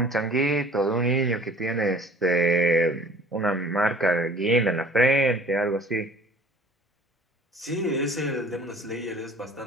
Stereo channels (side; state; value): both; normal; correlation 0.49